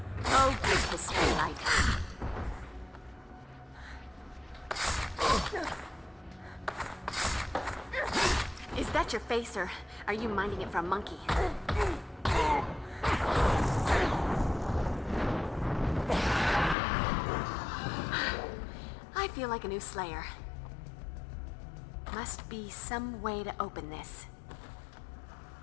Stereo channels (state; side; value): drops out; right; at 16.8 s